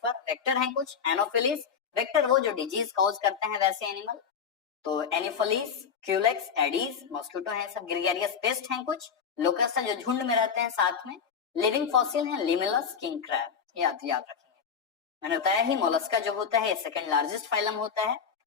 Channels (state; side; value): quieter; right; 6.8 dB